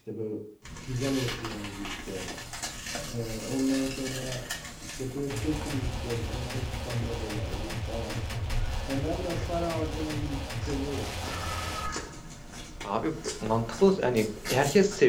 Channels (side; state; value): both; identical; correlation 1.00